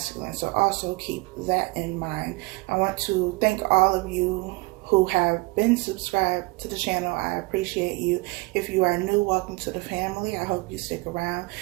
So also keep that in mind. I want to thank all of you who have been subscribed to the channel. I appreciate you. If you are new, welcome to the family. I hope you stick around.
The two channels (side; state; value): left; quieter; 25.2 dB